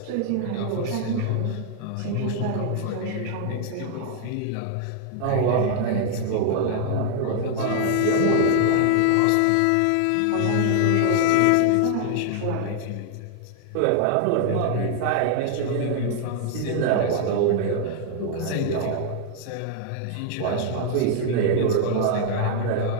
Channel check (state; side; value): different; both; correlation 0.00